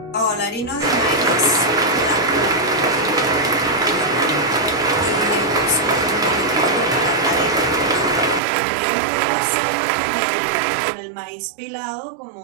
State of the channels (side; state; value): left; drops out; at 8.4 s